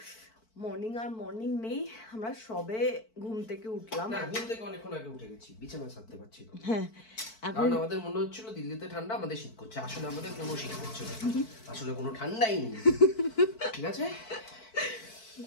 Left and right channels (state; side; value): late; right; 4.5 ms